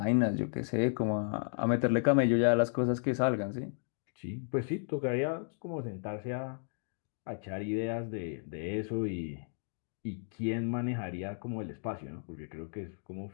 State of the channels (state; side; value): silent; right; digital silence